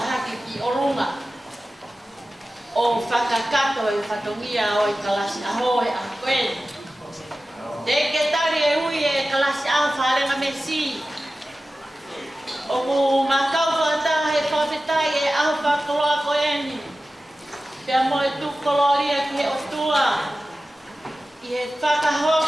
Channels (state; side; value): normal; both; correlation 0.95